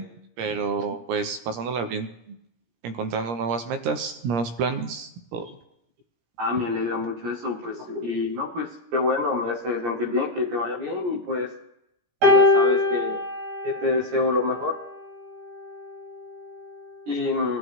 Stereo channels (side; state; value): left; late; 17 ms